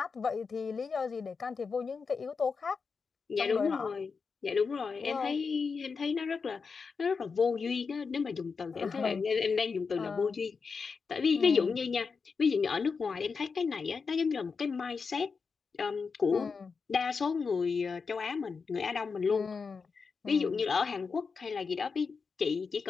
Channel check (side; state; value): right; quieter; 5.1 dB